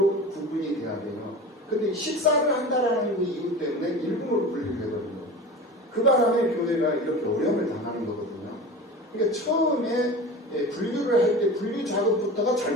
구분이 돼야 돼요. 근데 식사를 한다라는 그 이유 때문에 1군으로 분류를 해버린 거예요. 그 바람에 교회가 이렇게 어려움을 당하는 거거든요. 그러니까 처음에 분류를 할 때 분류 작업부터가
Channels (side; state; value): both; normal; correlation 0.33